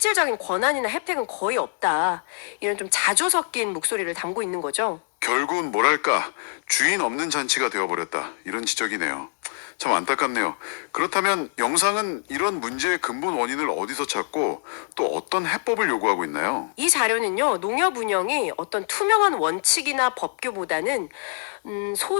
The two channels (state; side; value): silent; right; 62 dB below the other